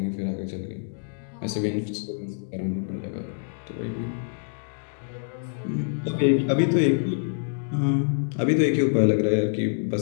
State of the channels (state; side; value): silent; right; digital silence